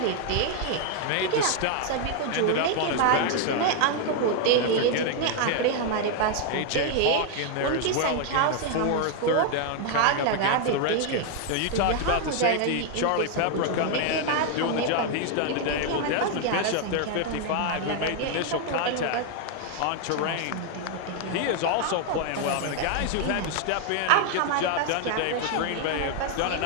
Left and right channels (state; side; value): different; both; correlation 0.00